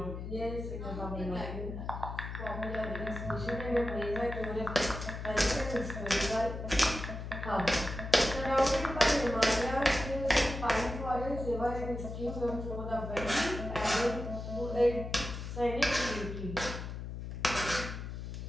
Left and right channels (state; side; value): noise; left; hum, 7 dB below the sound